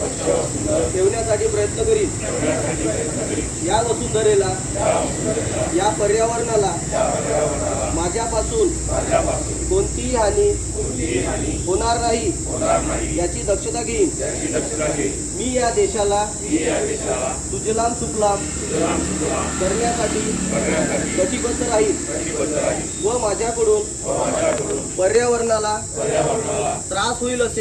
ठेवण्यासाठी प्रयत्न करीन। या वसुंधरेला या पर्यावरणाला माझ्यापासून कोणतीही हानी होणार नाही याची दक्षता घेईन। मी या देशाला सुजलाम सुफलाम करण्यासाठी कटिबद्ध राहील व माझ्याकडून पर्यावरणाला त्रास होईल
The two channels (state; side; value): identical; both; correlation 1.00